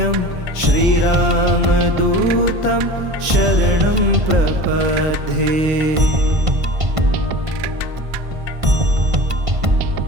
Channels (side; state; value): left; late; 1.5 ms